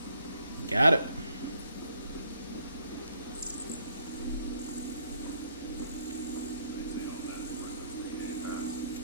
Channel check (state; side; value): inverted; both; correlation -0.69